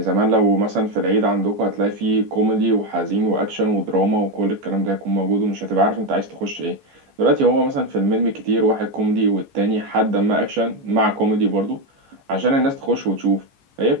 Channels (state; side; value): late; left; 14 ms